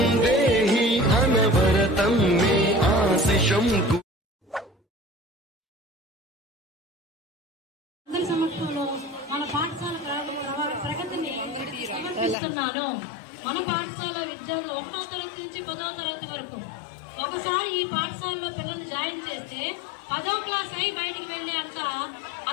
देहि अनवरतं मे आशिषं। అందరి సమక్షంలో మన పాఠశాల ప్రగతిని సమర్పిస్తున్నాను. మన పాఠశాల విద్యార్థులు 1వ తరగతి నుంచి 10వ తరగతి వరకు ఒకసారి ఈ పాఠశాలలో పిల్లల్ని జాయిన్ చేస్తే 10వ క్లాస్ అయి బయటికి వెళ్లే అంత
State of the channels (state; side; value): drops out; right; at 12.4 s